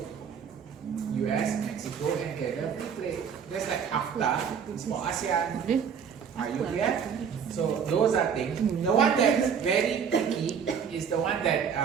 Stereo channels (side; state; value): left; quieter; 7.2 dB